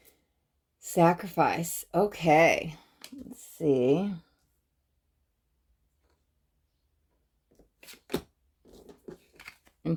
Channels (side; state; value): both; identical; correlation 1.00